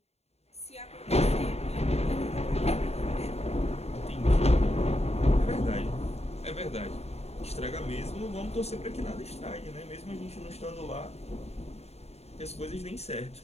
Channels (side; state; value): right; late; 0.30 ms